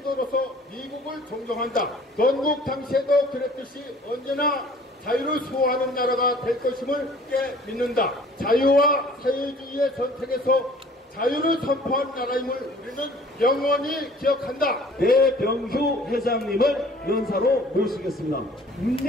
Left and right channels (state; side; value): normal; both; correlation 0.52